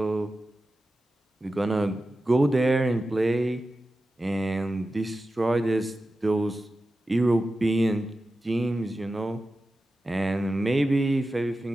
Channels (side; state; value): both; normal; correlation 0.93